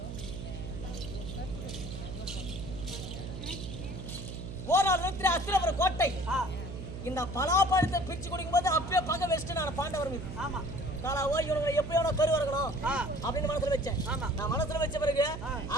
ஓராள் அஸ்திரபுரம் கோட்டை இந்த பலாப்பழத்தை பிரிச்சு குடிக்கும் போது அப்பயே பகை வச்சுட்டு நான் பாண்டவர் மீது இவங்க எப்படியோ கரு வரணும் அப்படின்னு மனசுல வச்சேன். நான் மனசுல வச்ச பிறகு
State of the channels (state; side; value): noise; right; hum, 8 dB below the sound